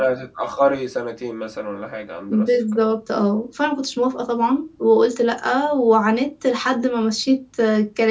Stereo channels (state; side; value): identical; both; correlation 1.00